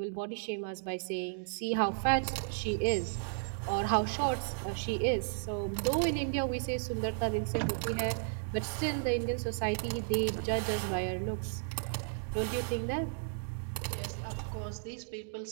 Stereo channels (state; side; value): silent; left; digital silence